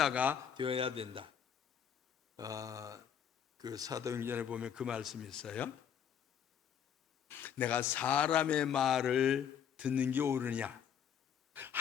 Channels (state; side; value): quieter; right; 8.5 dB